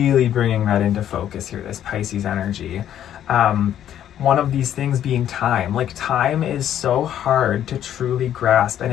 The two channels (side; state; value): right; quieter; 10.7 dB